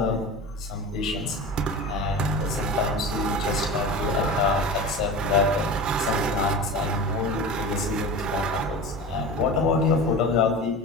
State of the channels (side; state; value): both; normal; correlation 0.31